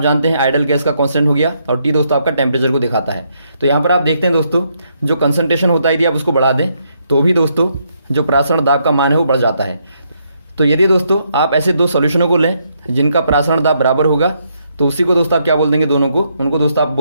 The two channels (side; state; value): both; inverted; correlation -0.75